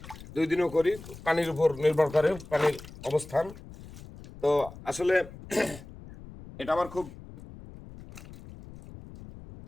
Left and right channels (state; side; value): noise; left; rumble, 16 dB below the sound